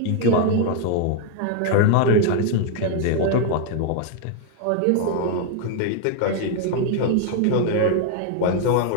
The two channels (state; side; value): different; both; correlation 0.00